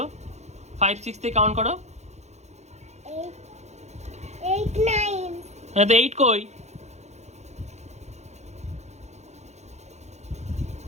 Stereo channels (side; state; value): left; late; 0.33 ms